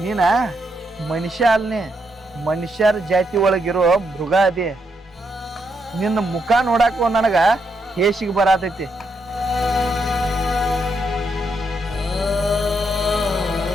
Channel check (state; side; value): normal; both; correlation 0.79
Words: ನೀನ ಮನುಷ್ಯ ಅಲ್ನೇ, ಮನುಷ್ಯರ ಜಾತಿ ಒಳಗಿರೋ ಮೃಗ ಅದೇ. ನಿನ್ನ ಮುಖ ನೋಡಾಕ ನನಗ ಹೇಸಿಗೆ ಬರತೈತಿ.